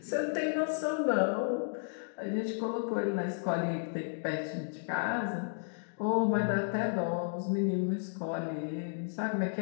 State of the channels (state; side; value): silent; right; digital silence